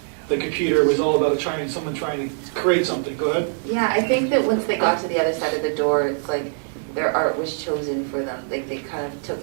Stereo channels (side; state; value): left; silent; digital silence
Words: the computer was all about someone trying to create something. Go ahead. Yeah, I think that once they got to the other side of the door, it's like their art was chosen for them. Like they kind of